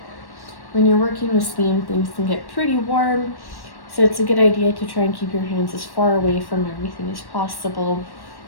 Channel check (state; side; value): late; right; 1.1 ms